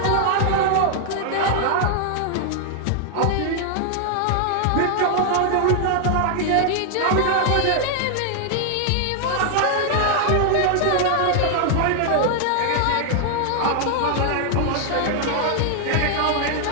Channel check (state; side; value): different; both; correlation 0.00